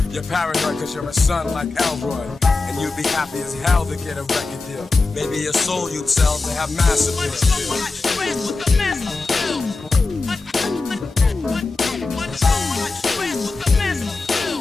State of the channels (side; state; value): right; quieter; 3.7 dB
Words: You're paranoid cause you're a son like Elroy, and you'd be happy as hell to get a record deal. Maybe your soul you'd sell to have massive appeal.